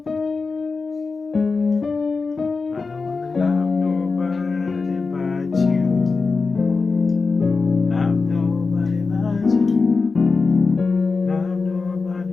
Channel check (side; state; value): right; quieter; 4.3 dB